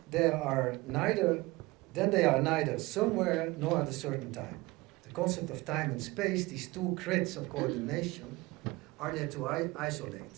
they are neither somewhere nor at a certain time. The concept of time and space, these two grids of coordination, are there to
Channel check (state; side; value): quieter; left; 21.8 dB